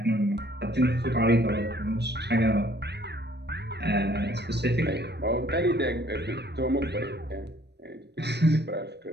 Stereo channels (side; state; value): left; late; 0.49 ms